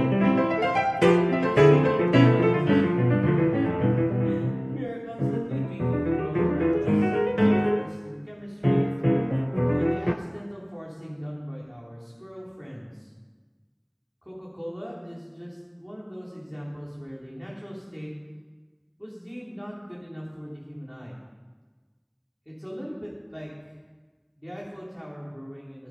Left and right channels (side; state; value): both; identical; correlation 1.00